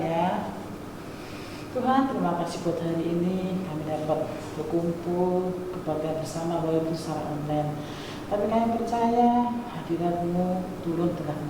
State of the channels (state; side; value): identical; both; correlation 1.00